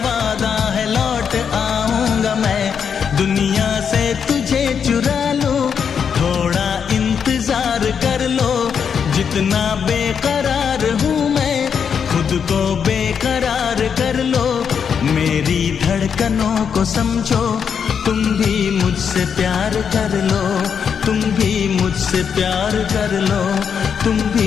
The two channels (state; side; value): quieter; right; 7.1 dB